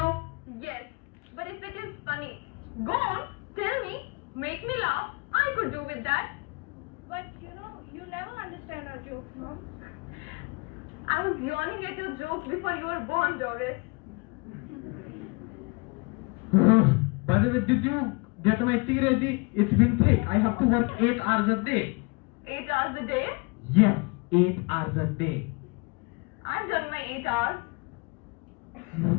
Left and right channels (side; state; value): right; quieter; 29.2 dB